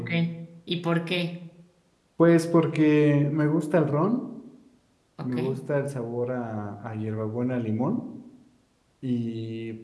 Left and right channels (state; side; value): identical; both; correlation 1.00